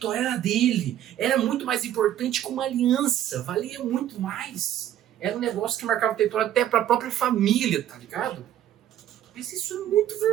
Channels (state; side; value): quieter; left; 11.5 dB